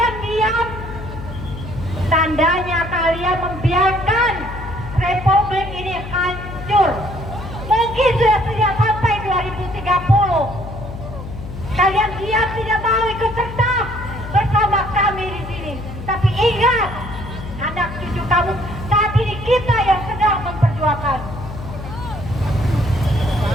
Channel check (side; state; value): left; noise; hum, 10 dB below the sound